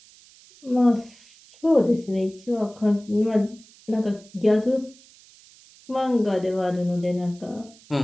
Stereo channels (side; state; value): right; noise; hiss, 25 dB below the sound